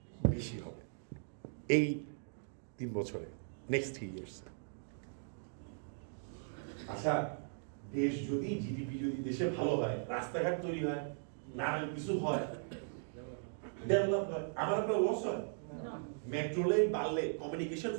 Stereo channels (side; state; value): left; silent; digital silence